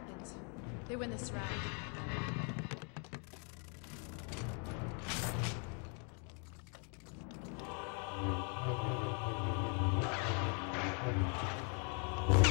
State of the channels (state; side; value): quieter; right; 37.7 dB